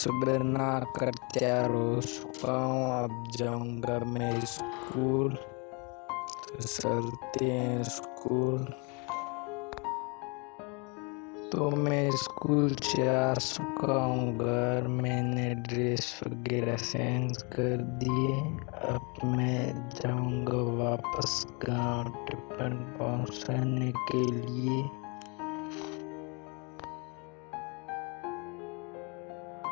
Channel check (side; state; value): right; quieter; 32.2 dB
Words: ना कर तैयार हो चुका हूँ, अब जाऊंगा मैं स्कूल। तो चलते हैं स्कूल। तो मैं स्कूल से आ चुका हूँ घर, मैंने ड्रेस वगैरह चेंज कर दिए। अब मैं जाऊंगा वापस गांव टिफिन पहुंचाने के लिए।